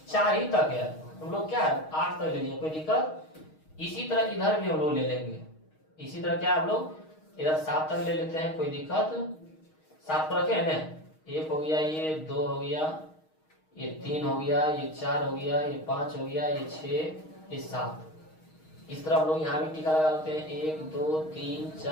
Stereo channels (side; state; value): right; late; 6.4 ms